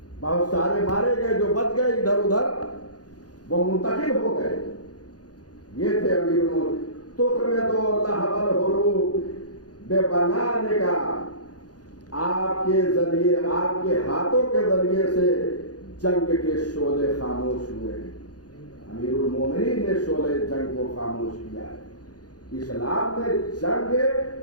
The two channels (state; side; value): late; right; 0.68 ms